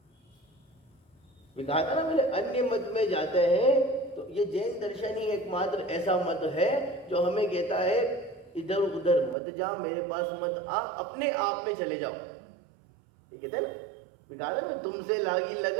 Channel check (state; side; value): drops out; left; at 9.3 s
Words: कहा था ना मैंने, अन्य मत में जाते हैं तो ये जैन दर्शन ही एकमात्र ऐसा मत है जो हमें कहता है इधर उधर मत जा, मेरे पास मत आ, अपने आप में चले जाओ। ये कहते हैं ना, कहा ना तुमसे लागी